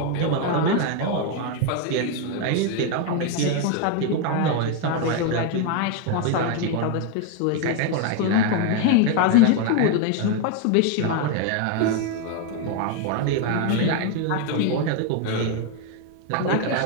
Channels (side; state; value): both; different; correlation 0.01